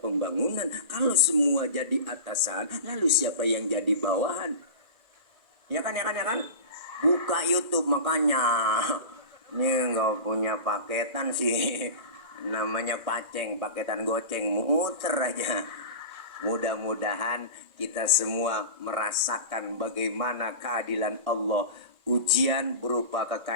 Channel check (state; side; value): late; left; 2.0 ms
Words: Kalau semua jadi atasan, lalu siapa yang jadi bawahan? ya kan, buka YouTube makanya. Ini nggak punya paketan sih, namanya paceng, paketan goceng, muter aja. Mudah-mudahan kita semua merasakan bagaimana keadilan Allah. Ujian berupa